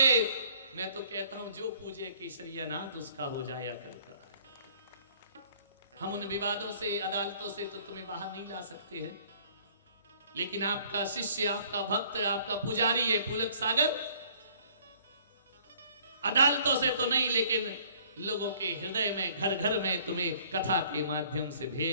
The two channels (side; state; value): both; inverted; correlation -0.57